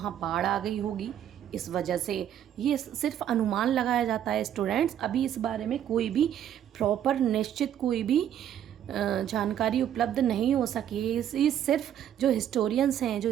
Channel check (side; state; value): left; quieter; 10.3 dB